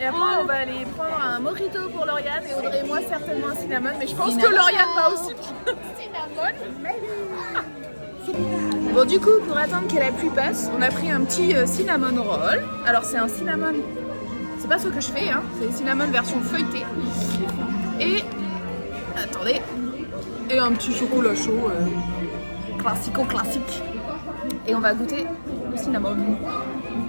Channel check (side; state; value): both; inverted; correlation -1.00